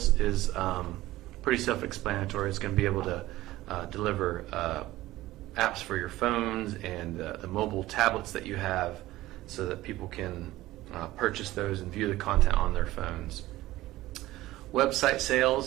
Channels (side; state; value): left; quieter; 16.7 dB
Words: is pretty self-explanatory. It's going to be able to deliver apps for your phones and the mobile tablets that you have, so that people can purchase those and view the content on their phones. Website